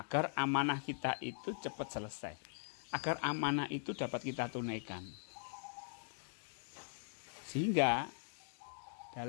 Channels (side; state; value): right; silent; digital silence